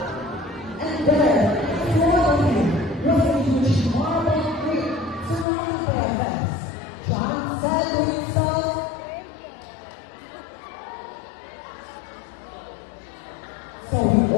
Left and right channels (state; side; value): drops out; right; at 5.5 s